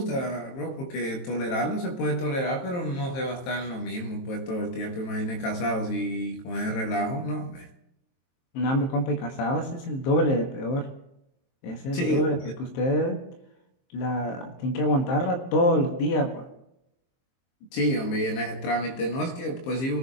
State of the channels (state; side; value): late; right; 23 ms